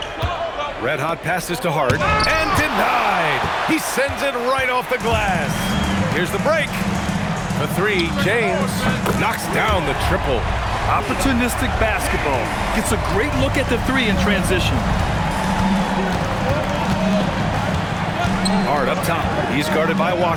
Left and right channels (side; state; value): both; identical; correlation 1.00